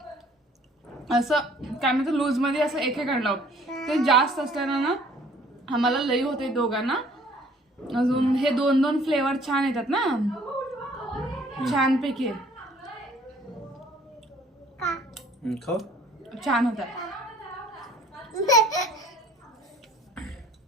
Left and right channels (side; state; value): both; normal; correlation 0.56